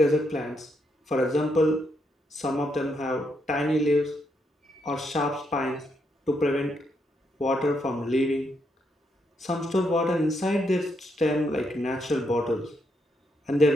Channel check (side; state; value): both; normal; correlation 0.78